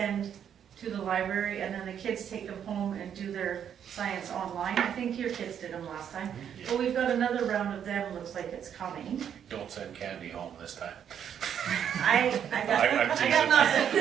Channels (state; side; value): quieter; left; 8.8 dB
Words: to the library, and then the kids take them home and do their science online. I think your kids did them last time. But we've got another round of them, looks like it's coming. Don't send candy home this time. I I'm got